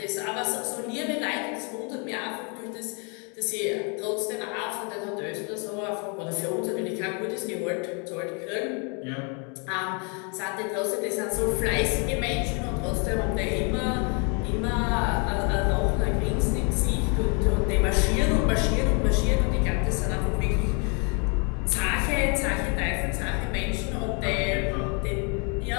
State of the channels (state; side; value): quieter; right; 35.6 dB